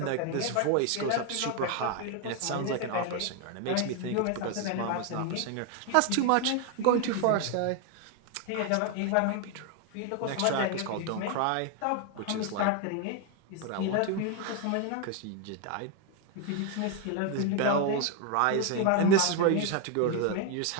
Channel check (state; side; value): different; both; correlation 0.01